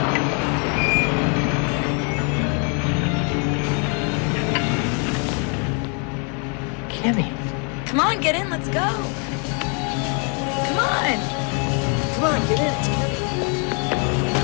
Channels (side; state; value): right; quieter; 37.1 dB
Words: Kimmy. Come on, get in, let's go. Come on. Come on, get in, it's